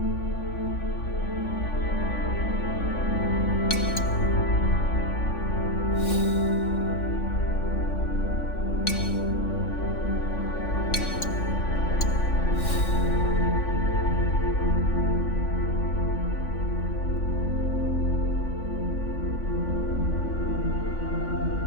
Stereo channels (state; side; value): late; right; 3.5 ms